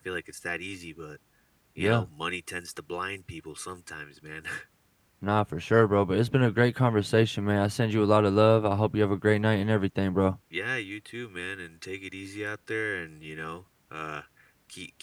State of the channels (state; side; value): identical; both; correlation 1.00